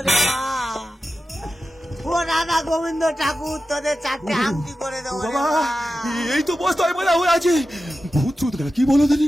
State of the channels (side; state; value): both; normal; correlation 0.92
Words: মা। ও রাধা গোবিন্দ ঠাকুর, তোদের 4টে আংটি করে দেবো রে বাবা, মা। এই তো বস্তায় বলা হয়ে আছে। ভূত চুত কি বলো দিনি?